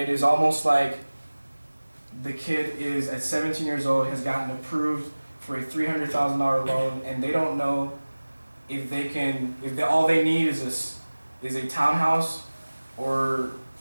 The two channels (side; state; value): both; inverted; correlation -1.00